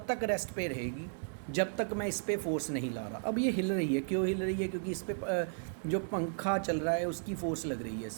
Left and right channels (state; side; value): silent; left; digital silence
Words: तक रेस्ट पे रहेगी जब तक मैं इस पर फोर्स नहीं ला रहा। अब ये हिल रही है, क्यों हिल रही है? क्योंकि इस पर जो पंखा चल रहा है उसकी फोर्स लग रही है